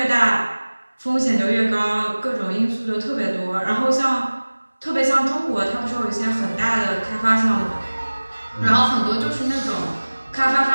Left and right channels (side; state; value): both; inverted; correlation -1.00